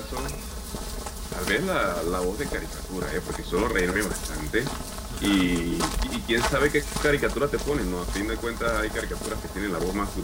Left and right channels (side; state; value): both; identical; correlation 1.00